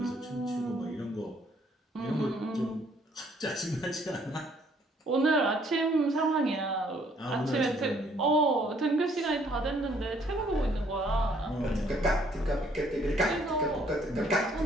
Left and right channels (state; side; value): normal; both; correlation 0.64